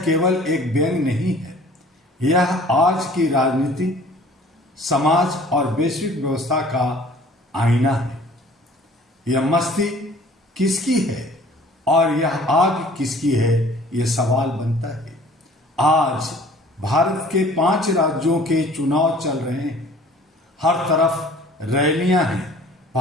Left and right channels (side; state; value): both; normal; correlation 0.51